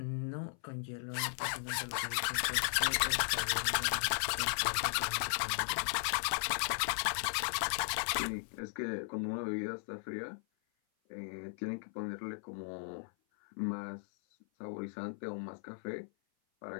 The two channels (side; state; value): right; silent; 53 dB below the other